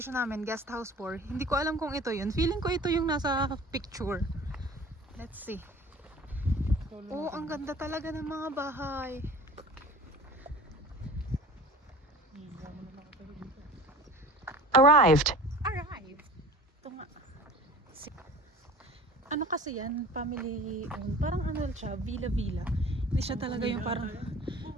namin, guest house 4. Hindi ko alam kung ito yun. Feeling ko ito yung nasa picture. Let's see. Oh, ang ganda talaga ng mga bahay. Arrived. Arrived. Ito nga. Ano kasi yan? Family owned. Parang siya, villa-villa. Hindi siya talaga yung parang...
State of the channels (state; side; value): normal; both; correlation 0.42